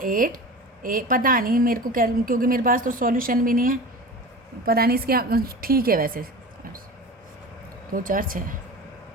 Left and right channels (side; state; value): both; normal; correlation 0.34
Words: पता नहीं मेरे को, क्योंकि मेरे पास तो सॉल्यूशन भी नहीं है, पता नहीं इसके। ठीक है, वैसे 2 4 6